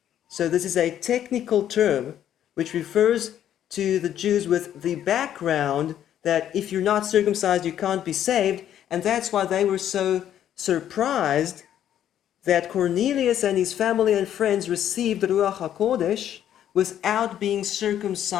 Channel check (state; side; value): quieter; right; 10.6 dB